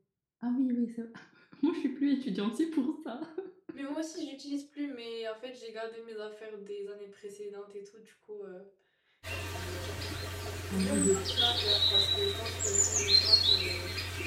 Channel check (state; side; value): identical; both; correlation 1.00